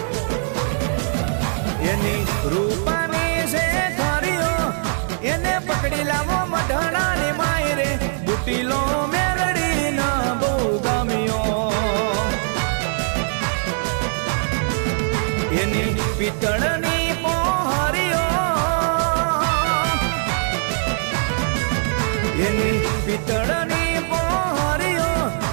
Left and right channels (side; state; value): left; silent; digital silence